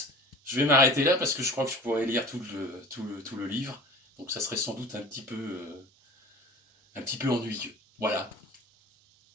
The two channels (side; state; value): both; normal; correlation 0.40